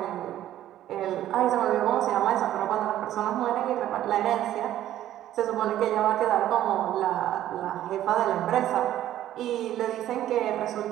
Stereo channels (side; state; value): left; quieter; 12.6 dB